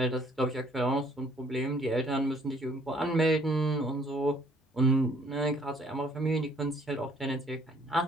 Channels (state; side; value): normal; both; correlation 0.61